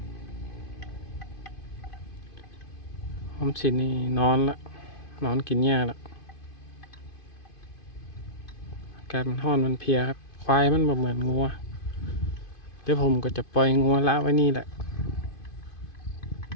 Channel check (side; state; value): right; late; 2.5 ms